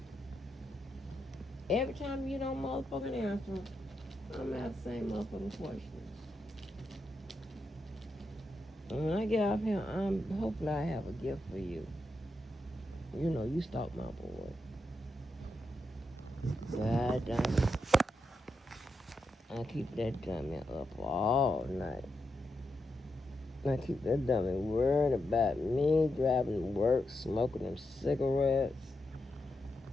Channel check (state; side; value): normal; both; correlation 0.85